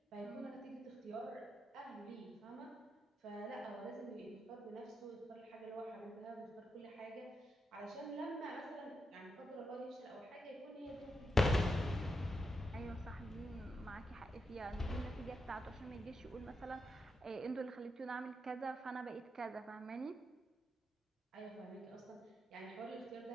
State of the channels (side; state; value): both; normal; correlation 0.84